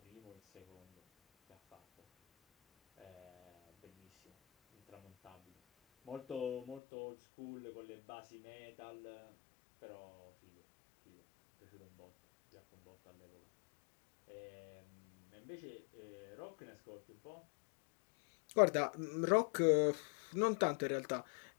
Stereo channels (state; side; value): drops out; right; at 6.8 s